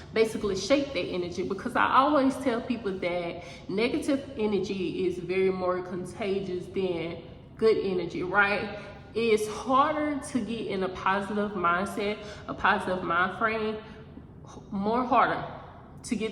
basically shape that energy. Because I always tell people that negative energy is very more contagious than good energy, right? It's harder to get in a positive mindset, a positive mind frame, more harder to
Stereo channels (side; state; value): both; identical; correlation 1.00